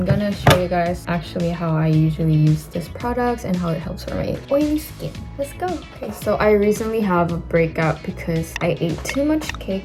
gonna show you guys actually how I usually use this product and how it helps for my oily skin. Let's go. Okay, so I recently have a breakout because I ate too much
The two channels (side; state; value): both; identical; correlation 1.00